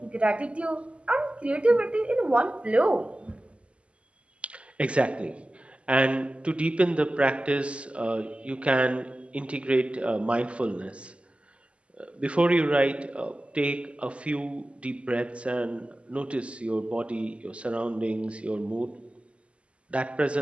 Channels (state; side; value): late; left; 0.058 ms